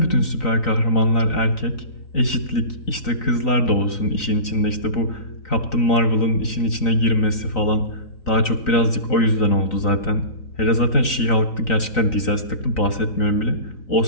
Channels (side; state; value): right; late; 3.9 ms